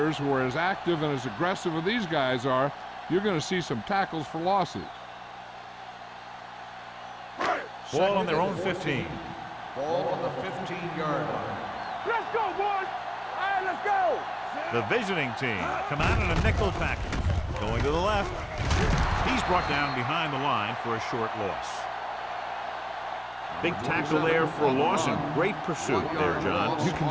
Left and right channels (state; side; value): identical; both; correlation 1.00